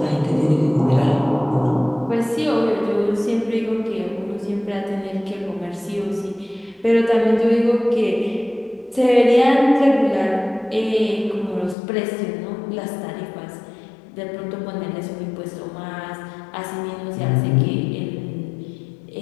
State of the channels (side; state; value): right; drops out; at 11.8 s